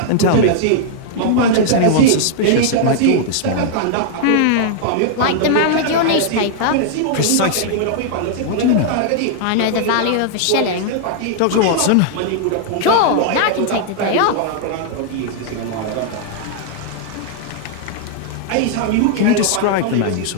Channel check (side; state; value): both; different; correlation -0.01